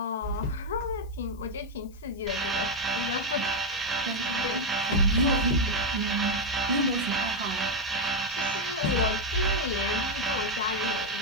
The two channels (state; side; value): noise; left; hiss, 29 dB below the sound